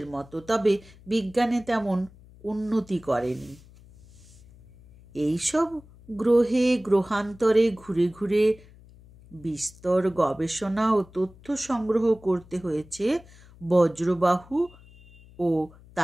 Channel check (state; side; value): noise; left; hum, 23 dB below the sound